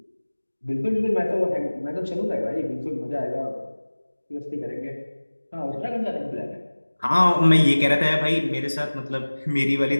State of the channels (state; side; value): inverted; both; correlation -1.00